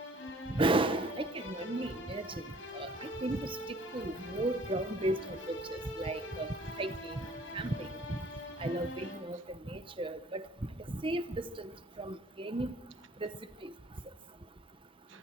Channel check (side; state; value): both; normal; correlation 0.54